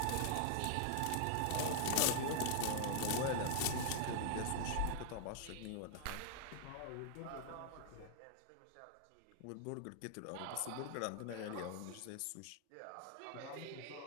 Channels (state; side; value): different; both; correlation 0.00